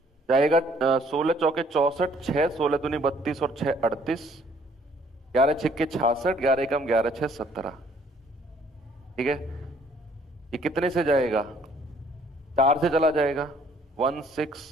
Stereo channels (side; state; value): both; normal; correlation 0.61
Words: जाएगा। 16 चौके 64, 6 16 दूनी 32 और 6 38, 11 छिक्के 66, 11 कम 11 6 17। ठीक है, ये कितने से जाएगा? 4 से चला जाएगा